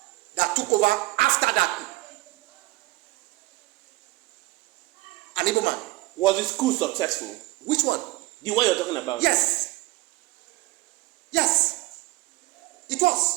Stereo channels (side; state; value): left; quieter; 20.0 dB